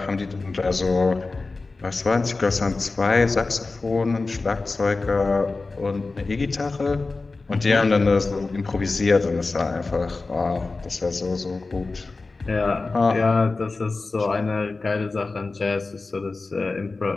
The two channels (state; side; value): quieter; right; 3.7 dB